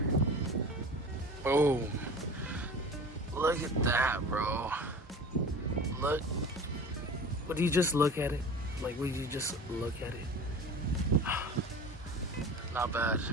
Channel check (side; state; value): both; normal; correlation 0.37